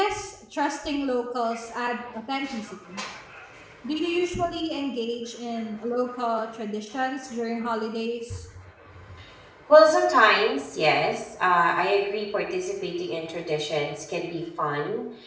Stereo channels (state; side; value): identical; both; correlation 1.00